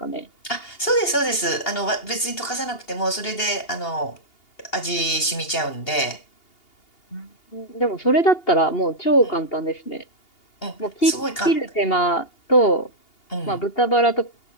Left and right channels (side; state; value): right; late; 2.8 ms